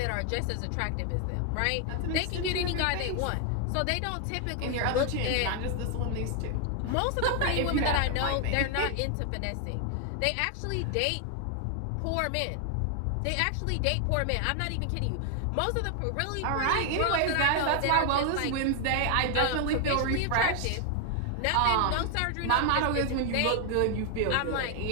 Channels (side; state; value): both; different; correlation 0.00